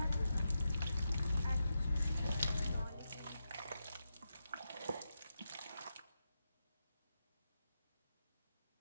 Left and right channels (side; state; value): both; inverted; correlation -0.87